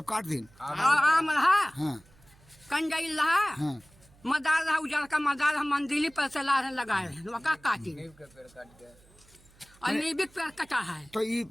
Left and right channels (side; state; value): right; noise; hum, 27 dB below the sound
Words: काट दिन? आम रहा, हाँ कंडाइल रहा, हाँ। मदार रहा, उजड़ का मदार हम मंदिली पर से ला लगाए हैं, वका काटी। और नीबिक पेड़ कटा है। तो ये